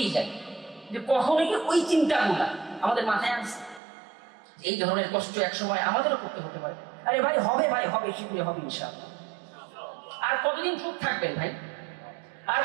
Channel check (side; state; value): left; drops out; at 3.8 s